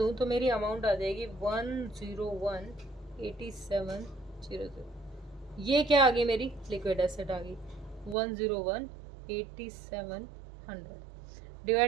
तो मेरी अमाउंट आ जाएगी 101,87,00। ये क्या आ गई, मेरी लिक्विड एसेट आ गई 101,87,100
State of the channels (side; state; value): left; drops out; at 8.2 s